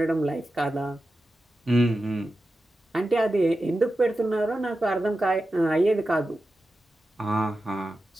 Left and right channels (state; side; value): normal; both; correlation 0.92